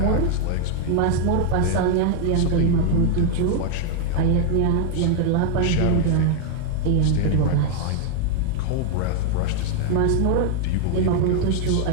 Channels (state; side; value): different; both; correlation 0.01